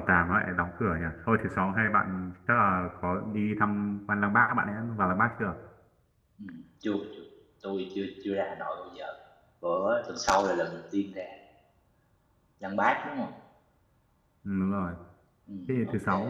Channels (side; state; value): both; identical; correlation 1.00